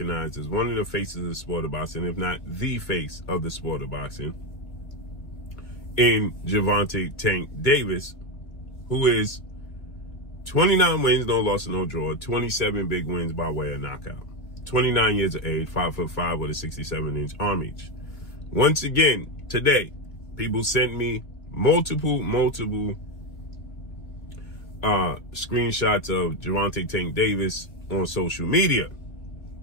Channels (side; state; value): right; late; 1.9 ms